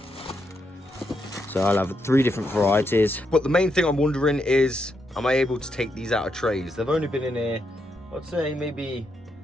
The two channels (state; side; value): normal; both; correlation 0.81